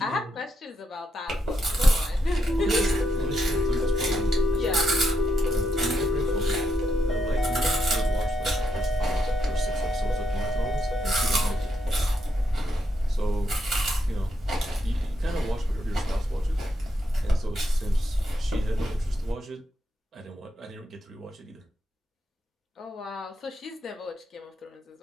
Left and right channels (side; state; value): both; normal; correlation 0.80